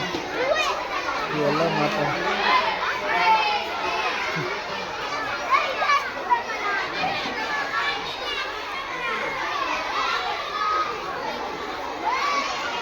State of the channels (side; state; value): both; identical; correlation 1.00